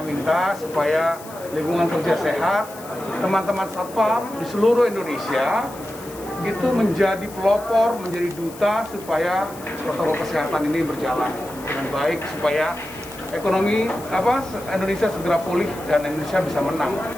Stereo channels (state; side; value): noise; left; hiss, 18 dB below the sound